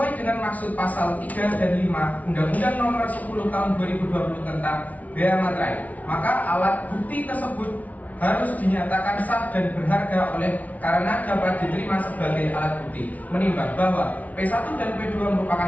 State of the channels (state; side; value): late; right; 0.071 ms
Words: dengan maksud pasal 3 dan 5 Undang-Undang Nomor 10 Tahun 2020 tentang bea materai. Maka alat bukti tersebut harus dinyatakan sah dan berharga karena dapat diterima sebagai alat bukti. Menimbang bahwa P1 dan P2